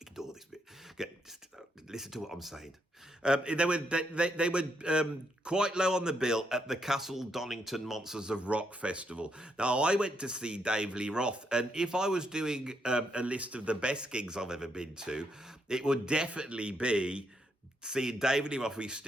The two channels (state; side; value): normal; both; correlation 0.78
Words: ignore this bit. Just listen to what I'm saying. They were quite low on the bill at the Castle Donington Monsters of Rock Festival. Now, I went to see Dave Lee Roth, and if I was doing a list of the best gigs I've ever been to, it would definitely be seeing David Lee Roth with